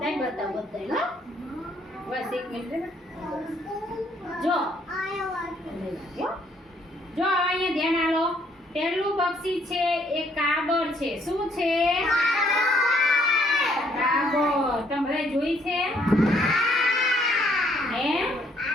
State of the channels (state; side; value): normal; both; correlation 0.67